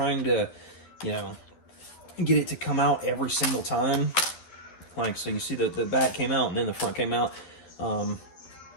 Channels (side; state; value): right; late; 12 ms